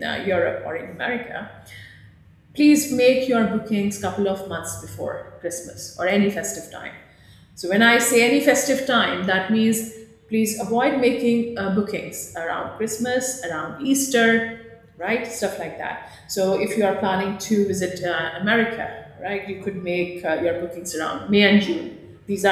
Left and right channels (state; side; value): identical; both; correlation 1.00